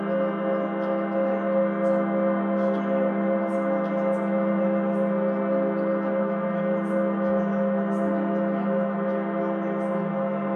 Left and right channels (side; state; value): both; identical; correlation 1.00